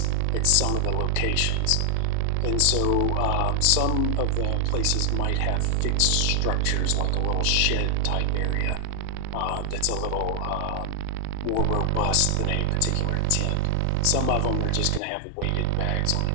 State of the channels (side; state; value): both; different; correlation 0.00